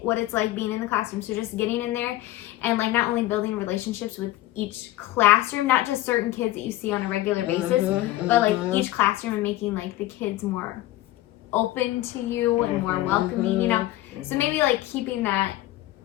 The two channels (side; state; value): right; quieter; 16.1 dB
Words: what it's like being in the classroom. So just getting in there and like not only building relationships with each classroom, not just certain kids that you see on a regular basis, but like each classroom, and making like the kids more open to you and more welcoming, So maybe like keeping